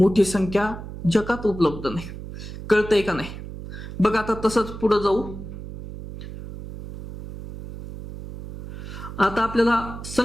संख्या जगात उपलब्ध नाही. कळतंय का नाही? बघ आता तसंच पुढे जाऊ. आता आपल्याला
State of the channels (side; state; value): right; noise; hum, 11 dB below the sound